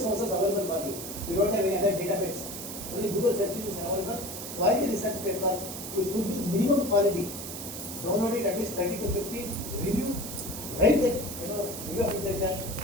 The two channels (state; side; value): noise; right; hiss, 8 dB below the sound